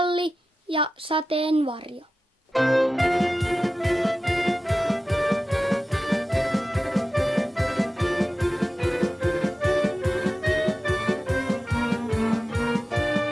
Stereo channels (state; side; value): normal; both; correlation 0.94